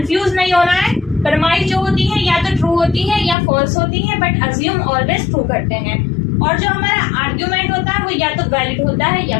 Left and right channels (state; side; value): drops out; right; at 3.4 s